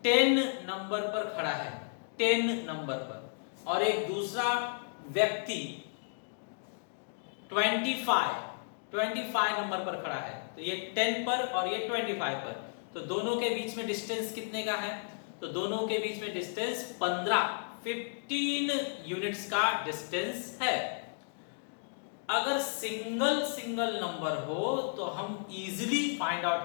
10 नंबर पर खड़ा है, 10 नंबर पर, और एक दूसरा व्यक्ति 25 नंबर पर खड़ा है, तो ये 10 पर और ये 25 पर, तो दोनों के बीच में डिस्टेंस कितने का है? तो दोनों के बीच में डिस्टेंस 15 यूनिट्स का डिस्टेंस है। अगर सिंगल नंबर हो तो हम इजीली फाइंड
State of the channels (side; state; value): right; silent; digital silence